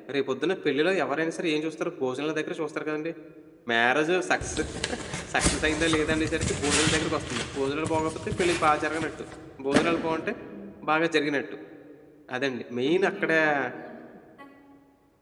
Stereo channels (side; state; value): both; identical; correlation 1.00